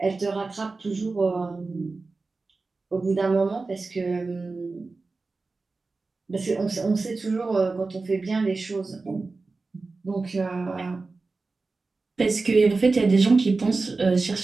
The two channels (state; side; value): quieter; left; 3.8 dB